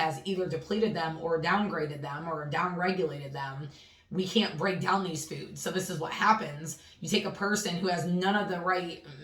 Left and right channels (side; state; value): both; identical; correlation 1.00